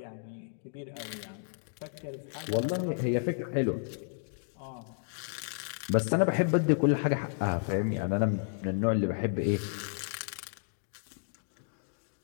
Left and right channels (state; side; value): silent; right; digital silence